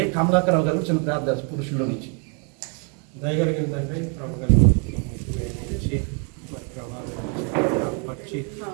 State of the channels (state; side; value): quieter; left; 38.1 dB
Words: కమలాకరావు గారు చిన్న ప్రార్థన పురుషుల్లో నుంచి. దయగలిగిన తండ్రి ప్రభు కలిగి మరి ప్రభావం పరిచి